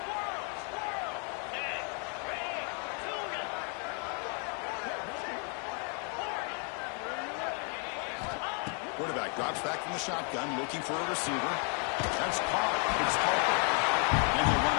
Quarterback drops back from the shotgun, looking for a receiver. That's caught. It's Harper. And he'll run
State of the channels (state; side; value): quieter; right; 39.1 dB